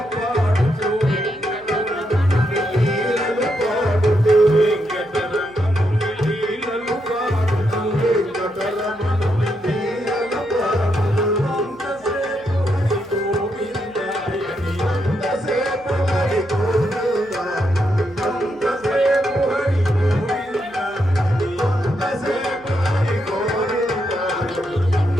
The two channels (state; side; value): noise; left; hum, 26 dB below the sound